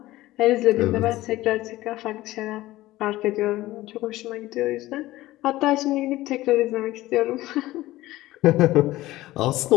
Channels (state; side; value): quieter; right; 17.0 dB